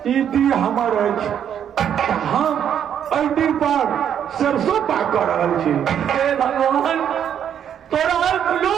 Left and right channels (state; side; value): quieter; left; 9.1 dB